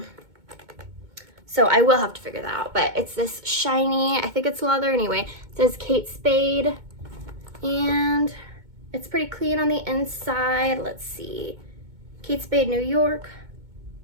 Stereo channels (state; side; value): late; left; 2.2 ms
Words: So I will have to figure that out, but it's this shiny, I think it's leather anyway. It says Kate Spade, and it's pretty clean on the inside. Let's see. Kate Spade, New York.